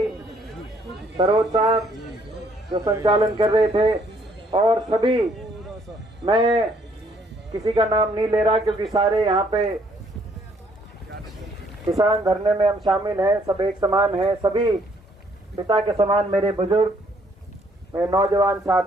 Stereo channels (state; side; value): normal; both; correlation 0.66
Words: सरोज साहब जो संचालन कर रहे थे, और सभी, मैं किसी का नाम नहीं ले रहा क्योंकि सारे यहाँ पे किसान धरने में हम शामिल हैं, सब एक समान हैं, सभी पिता के समान मेरे बुजुर्ग, मेरे नौजवान